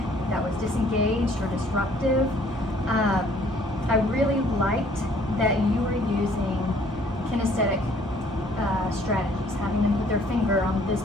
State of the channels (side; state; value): both; normal; correlation 0.59